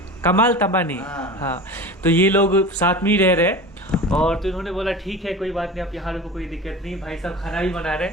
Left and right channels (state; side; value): normal; both; correlation 0.33